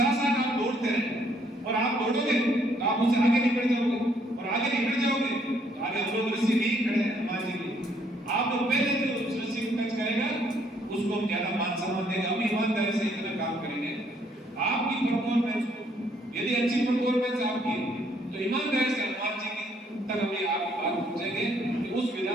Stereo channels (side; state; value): both; normal; correlation 0.68